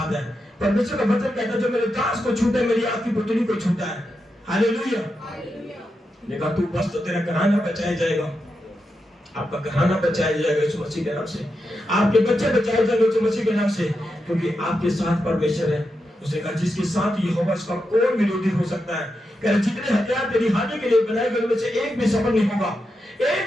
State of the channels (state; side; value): normal; both; correlation 0.87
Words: है, परमेश्वर का वचन कहता है जो मेरे दास को छूटे मेरी आपकी पुतली को छूटा है। हालेलुया। देखा तू बस तो तेरा घराना बचाया जाएगा, आपका घराना बचाया जाएगा यीशु मसीह के नाम से, आपके बच्चे बचाए जाएंगे यीशु मसीह के नाम से, क्योंकि आपके साथ परमेश्वर है। उसने कहा जिसके साथ यहोवा उसका कौन विरोधी हो सकता है? कह रहे जितने हथियार तेरी हानि के लिए बनाए गए उनमें से एक भी सफल नहीं होगा,